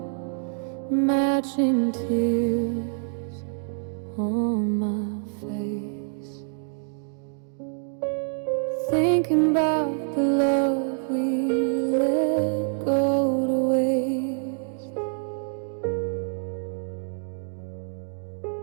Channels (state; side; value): silent; left; digital silence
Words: matching tears on my face, thinking about the love we let go to waste.